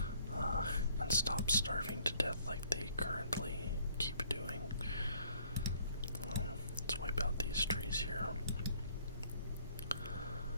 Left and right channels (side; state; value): both; inverted; correlation -0.61